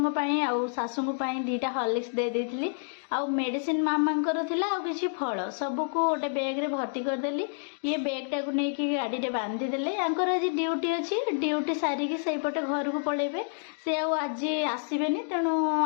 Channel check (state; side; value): silent; right; digital silence